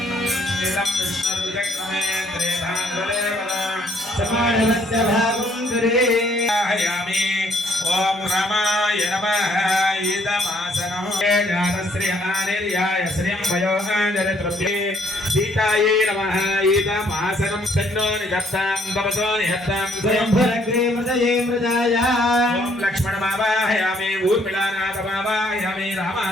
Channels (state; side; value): normal; both; correlation 0.65